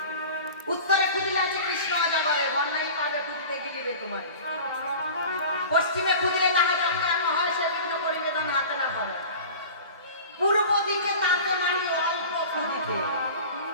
উত্তরে খুদিলে আছে কৃষ্ণ অজগরে, বন্যাই পাবে খুদিতে গিলিবে তোমার। পশ্চিমে খুদিলে তাহা যখন এমন হয়, সে বিঘ্ন করিবে ধন হাতে না পাবে। পূর্ব দিকে তাতে মারি অল্প খুদিতে,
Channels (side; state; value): both; inverted; correlation -0.38